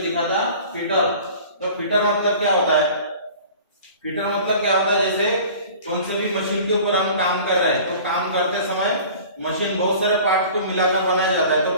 लिखा था फिटर, तो फिटर मतलब क्या होता है, फिटर मतलब क्या होता है, जैसे कौन से भी मशीन के ऊपर हम काम कर रहे हैं, तो काम करते समय मशीन बहुत सारे पार्ट को मिलाकर बनाया जाता है।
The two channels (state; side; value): inverted; both; correlation -0.44